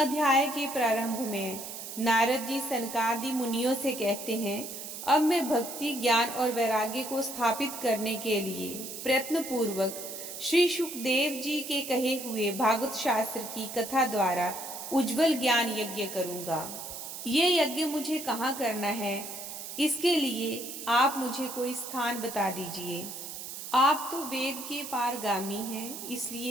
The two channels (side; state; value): right; noise; hiss, 9 dB below the sound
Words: के प्रारंभ में नारद जी सनकादि मुनियों से कहते हैं, अब मैं भक्ति, ज्ञान और वैराग्य को स्थापित करने के लिए प्रयत्न पूर्वक श्री सुखदेव जी के कहे हुए भागवत शास्त्र की कथा द्वारा उज्जवल ज्ञान यज्ञ करूंगा। ये यज्ञ मुझे कहाँ करना है, इसके लिए आप मुझे कोई स्थान बता दीजिए। आप तो वेद के पारगामी हैं,